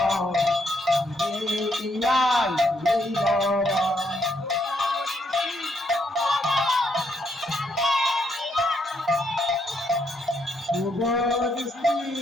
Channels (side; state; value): both; normal; correlation 0.75